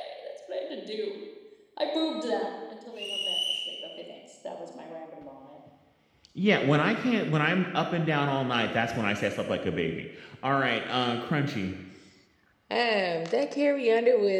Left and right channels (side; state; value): both; identical; correlation 1.00